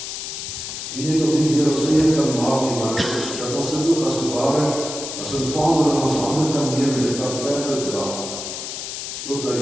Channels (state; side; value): noise; left; hiss, 7 dB below the sound